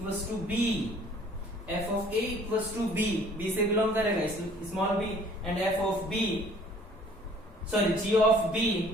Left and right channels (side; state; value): both; normal; correlation 0.54